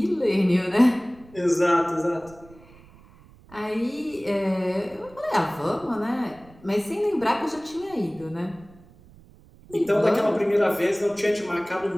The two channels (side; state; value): right; noise; rumble, 24 dB below the sound